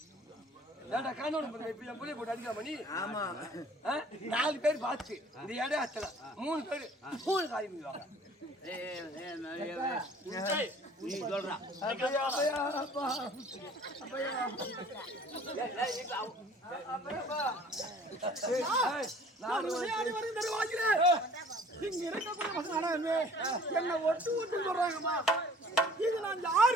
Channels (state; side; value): normal; both; correlation 0.51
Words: ஏன்டா காணோட இப்ப என் பிள்ளைய போட்டு அடிக்கலாமா நீ? ஆமா 4 பேர் பார்த்து இந்த இடம் அத்தல 3 பேர் 3 காரியம் பண்ணுவாங்க. நீ சொல்றா இங்க இருக்கக்கூடிய என்ன ஒட்டு ஒட்டு சொல்றாங்கம்மா. இது நான்